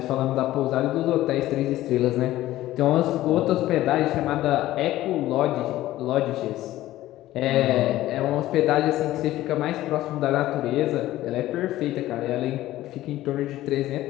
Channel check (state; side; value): quieter; right; 15.3 dB